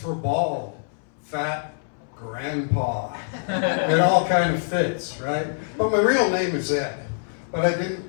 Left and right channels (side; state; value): right; silent; 62 dB below the other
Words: bald, fat, grandpa. It all kind of fits, right? But my real name is Ed. But I